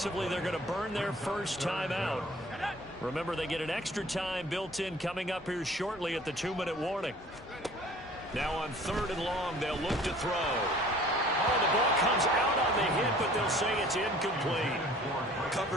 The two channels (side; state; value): both; normal; correlation 0.50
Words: they're going to burn their first timeout. Remember, they get an extra time built in coming up here shortly at the 2-minute warning. Now on 3rd and long, they'll look to throw. Oh, the ball comes out on the hit, but they'll say it's incomplete.